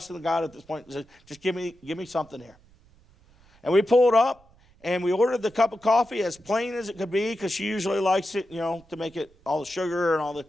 God at this point. I said, just give me something here. And we pulled up, and we ordered the cup of coffee as plain as it could be, because she usually likes it, to make it all the sugar and all the.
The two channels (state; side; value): noise; right; rumble, 29 dB below the sound